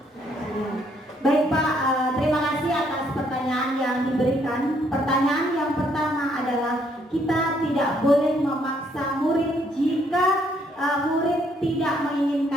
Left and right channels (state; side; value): normal; both; correlation 0.69